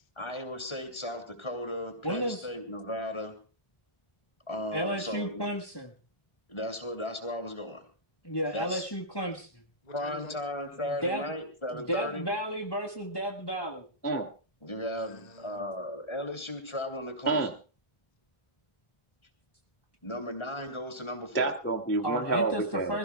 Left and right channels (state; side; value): late; right; 1.3 ms